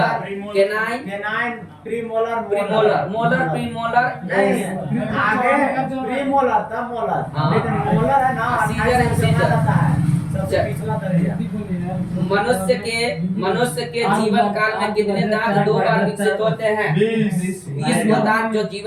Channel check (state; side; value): identical; both; correlation 1.00